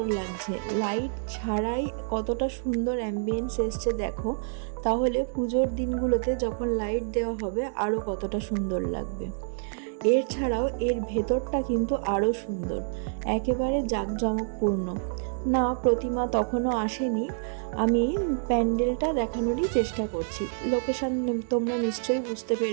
লাগছে। লাইট ছাড়াই কতটা সুন্দর অ্যাম্বিয়েন্স এসছে দেখো। তাহলে পুজোর দিনগুলোতে যখন লাইট দেওয়া হবে আরও কতটা সুন্দর লাগবে। এর ছাড়াও এর ভেতরটা কিন্তু আরও সুন্দর, একেবারে জাঁকজমকপূর্ণ। না, প্রতিমা তখনও আসেনি, আমি প্যান্ডেলটা দেখানোরই চেষ্টা করছি। লোকেশন তোমরা নিশ্চয়ই বুঝতে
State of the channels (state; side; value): silent; left; digital silence